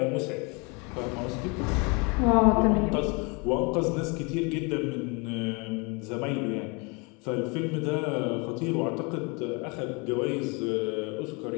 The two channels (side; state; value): right; quieter; 30.6 dB